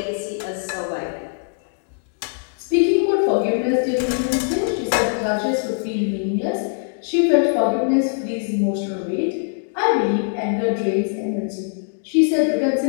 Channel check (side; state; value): right; silent; digital silence